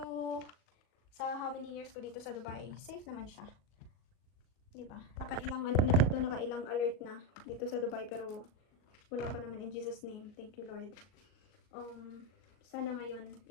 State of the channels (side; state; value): right; late; 38 ms